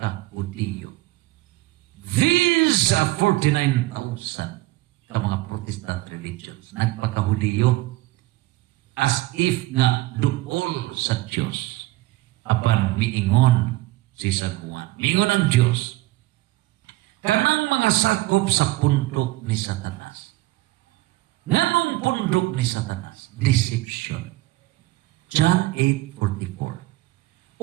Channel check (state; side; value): quieter; left; 18.7 dB